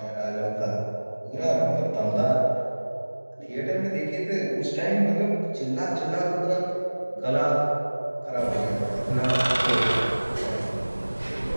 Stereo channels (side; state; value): both; inverted; correlation -1.00